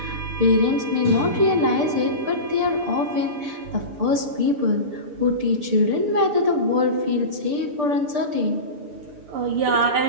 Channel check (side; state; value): left; late; 6.8 ms